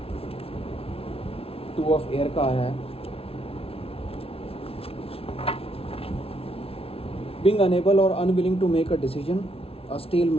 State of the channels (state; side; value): late; right; 0.27 ms